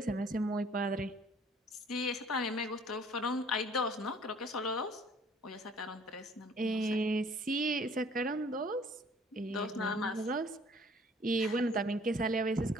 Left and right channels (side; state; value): both; normal; correlation 0.55